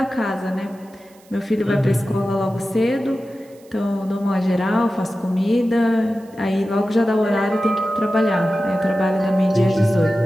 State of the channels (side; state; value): right; noise; hiss, 29 dB below the sound